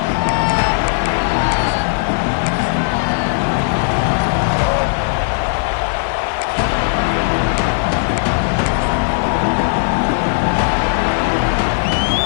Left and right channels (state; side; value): silent; right; digital silence